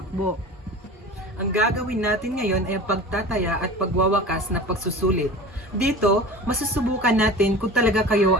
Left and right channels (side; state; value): both; normal; correlation 0.37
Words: Ang gagawin natin ngayon ay ang pagtataya at pagwawakas na pagsusulit. Dito, masusubukan natin kung talaga kayo